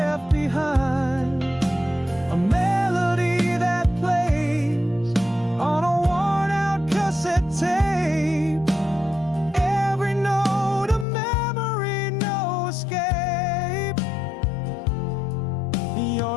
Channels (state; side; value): drops out; right; at 11.1 s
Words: behind, a melody that plays on a worn out cassette tape, every note a memory, no escape.